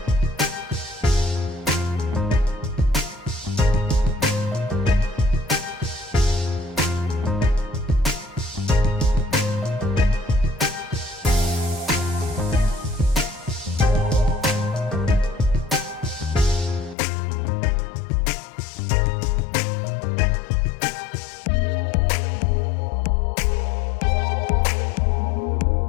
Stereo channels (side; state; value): right; drops out; at 16.9 s